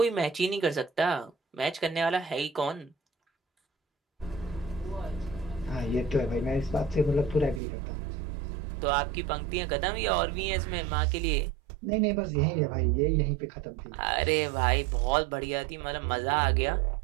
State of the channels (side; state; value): left; drops out; at 7.6 s